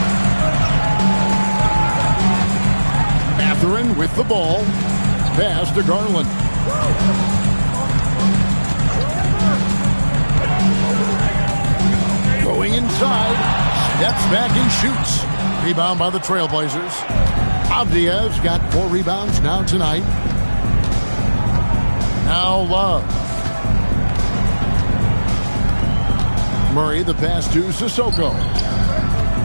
Mathurin with the ball. Pass to Garland. Going inside. Steps back and shoots. Rebound by the Trailblazers. Avdia's got 4 rebounds now tonight. Now Love. Murray, the pass to Sissoko.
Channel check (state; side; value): inverted; both; correlation -1.00